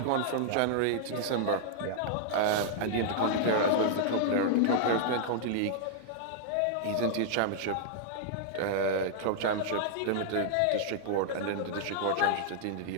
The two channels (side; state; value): both; different; correlation -0.01